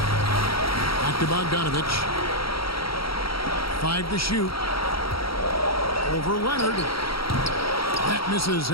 Back to Bogdanovich. 5 to shoot. Over Leonard. That misses.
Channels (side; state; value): right; late; 0.75 ms